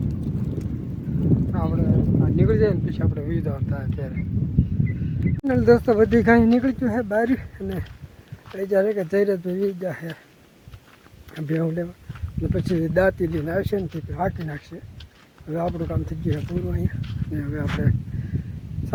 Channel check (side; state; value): both; identical; correlation 1.00